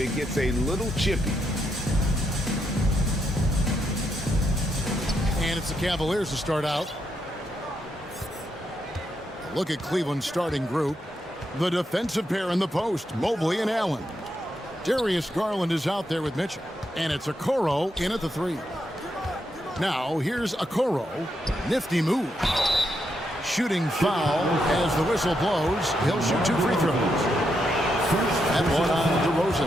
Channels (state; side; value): normal; both; correlation 0.81